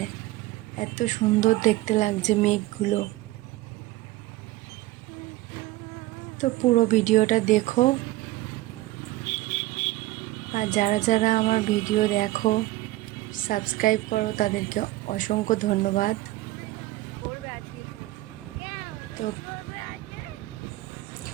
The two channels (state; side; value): quieter; left; 17.9 dB